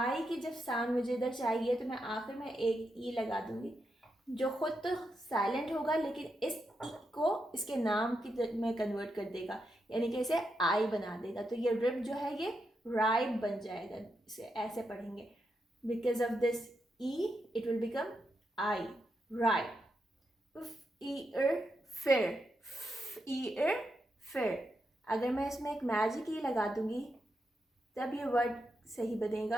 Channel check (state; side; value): normal; both; correlation 0.84